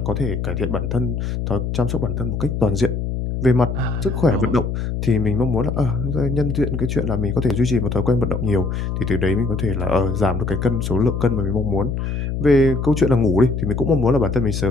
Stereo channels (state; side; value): noise; left; hum, 2 dB below the sound